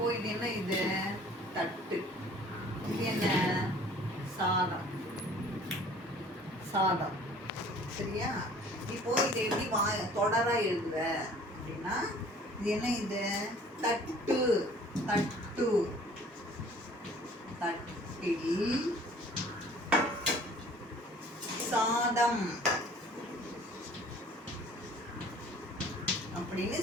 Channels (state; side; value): normal; both; correlation 0.51